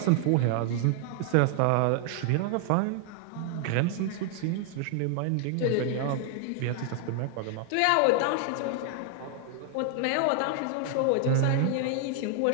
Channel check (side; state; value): both; different; correlation 0.00